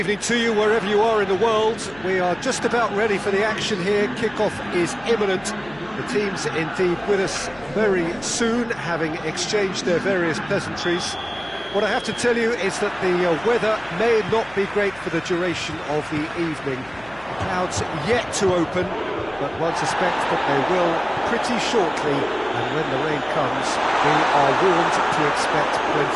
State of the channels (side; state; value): left; noise; hum, 23 dB below the sound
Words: to you wherever you are in the world. We are just about ready for the action here. Kickoff is imminent. The teams indeed with us very soon, having exchanged their various pleasantries. What I have to tell you is that the weather may not be great for the duration of the evening. The clouds yet to open, but one suspects that they will pretty shortly, and when the rain comes, we are warned to expect